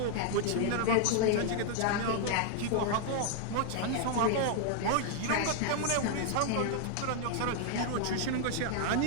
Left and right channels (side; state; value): both; different; correlation 0.00